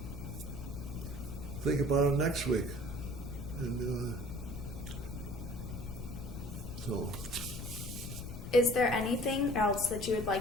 think about it next week. And so. Is there anything else that you would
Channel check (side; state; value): left; noise; rumble, 8 dB below the sound